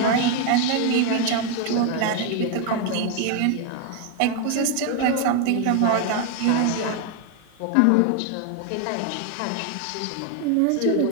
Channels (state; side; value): different; both; correlation 0.01